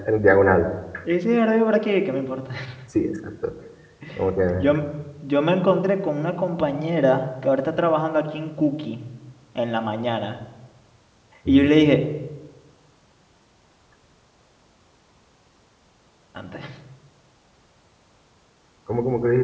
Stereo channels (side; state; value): both; identical; correlation 1.00